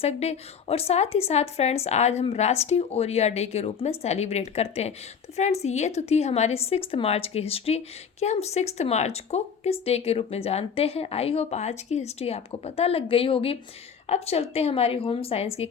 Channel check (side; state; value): right; quieter; 6.8 dB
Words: डे और साथ ही साथ फ्रेंड्स आज हम राष्ट्रीय ओरिया डे के रूप में सेलिब्रेट करते हैं। तो फ्रेंड्स ये तो थी हमारी 6 मार्च की हिस्ट्री कि हम 6 मार्च को किस डे के रूप में जानते हैं। आई होप आज की हिस्ट्री आपको पता लग गई होगी। अब चलते हैं हमारी होम साइंस की